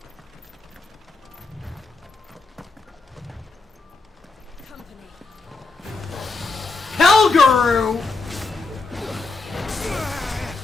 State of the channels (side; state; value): right; quieter; 3.8 dB